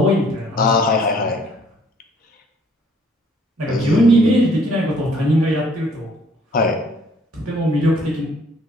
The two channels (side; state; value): both; normal; correlation 0.60